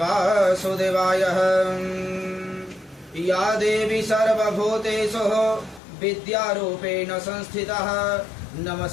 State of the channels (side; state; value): right; drops out; at 5.8 s